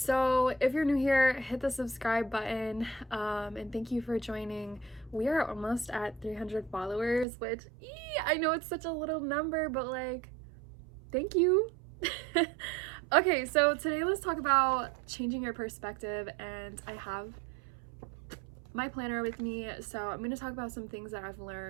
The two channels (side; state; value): left; drops out; at 7.2 s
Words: if you're new here, hit the subscribe button, and thank you for joining. We are almost at 300 followers, which I know it's such a little number, but like, thank you. Okay, so today let's talk about changing your perspective, and I have my planner with me, so I'm going to talk about some things that I've